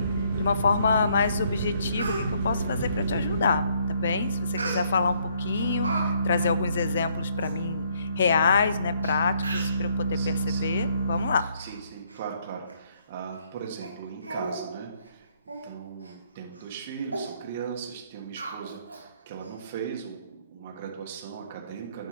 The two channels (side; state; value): both; inverted; correlation -0.69